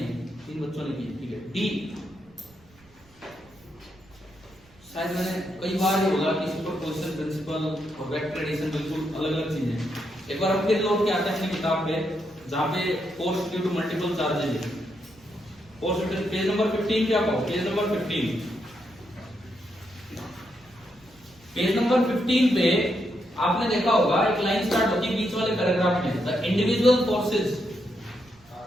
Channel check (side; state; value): right; noise; rumble, 29 dB below the sound